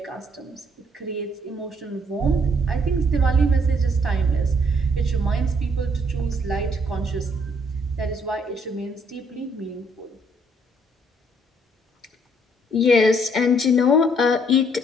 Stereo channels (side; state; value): both; normal; correlation 0.66